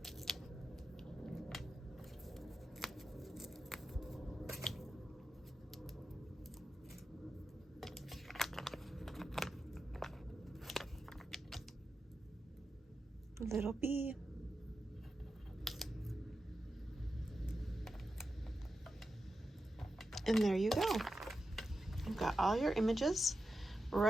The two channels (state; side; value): normal; both; correlation 0.90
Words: Little bee. And there you go. You've got all your images